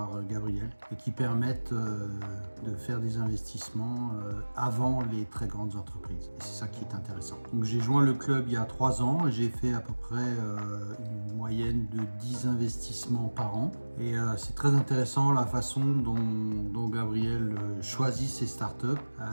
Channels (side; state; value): both; inverted; correlation -1.00